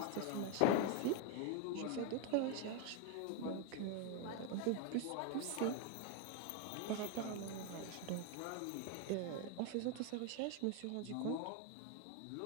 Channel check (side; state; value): both; different; correlation 0.01